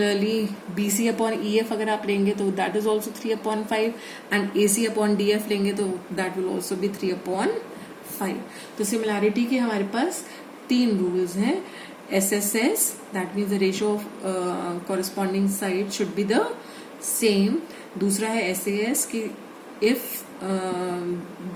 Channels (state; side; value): identical; both; correlation 1.00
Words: BC upon EF अगर आप लेंगे तो that is also 3/5, and AC upon DF लेंगे तो दैट विल ऑल्सो बी 3/5। तो सिमिलैरिटी के हमारे पास 3 रूल्स हैं। SSS, that means the ratio of corresponding side should be the same. दूसरा है SAS कि इफ